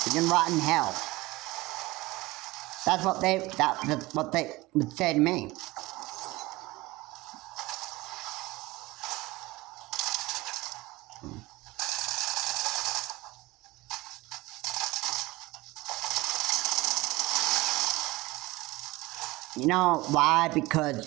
You can rot in hell. That's what they would say to me. You know why?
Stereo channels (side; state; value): left; quieter; 20.6 dB